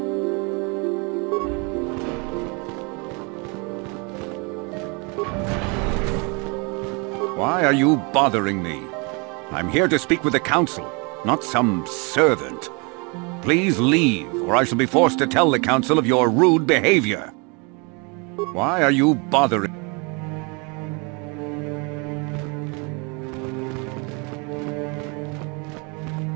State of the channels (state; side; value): quieter; left; 31.5 dB